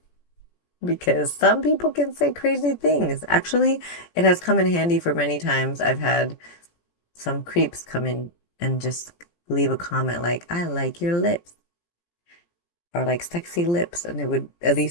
because some people can say crazy things. Actually, it has come in handy for many times. I've had some creeps come in and just leave a comment like, I like your lips or like sexy lips. And they would at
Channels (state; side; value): late; right; 17 ms